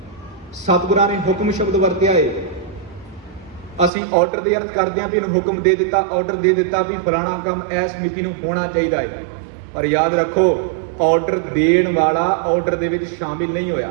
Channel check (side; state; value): left; drops out; at 3.9 s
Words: ਸਤਿਗੁਰਾਂ ਨੇ ਹੁਕਮ ਸ਼ਬਦ ਵਰਤਿਆ ਹੈ, ਅਸੀਂ ਆਰਡਰ ਦੇ ਅਰਥ ਕਰਦੇ ਹਾਂ ਵੀ ਇਹਨੂੰ ਹੁਕਮ ਦੇ ਦਿੱਤਾ, ਆਰਡਰ ਦੇ ਦਿੱਤਾ ਵੀ ਫਲਾਣਾ ਕੰਮ ਇਸ ਮਿਤੀ ਨੂੰ ਹੋਣਾ ਚਾਹੀਦਾ ਹੈ। ਪਰ ਯਾਦ ਰੱਖੋ ਆਰਡਰ ਦੇਣ ਵਾਲਾ ਆਰਡਰ ਦੇ ਵਿੱਚ ਸ਼ਾਮਿਲ ਨਹੀਂ ਹੋਇਆ।